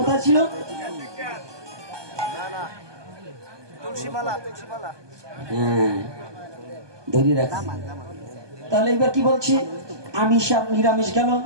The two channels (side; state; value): left; late; 1.2 ms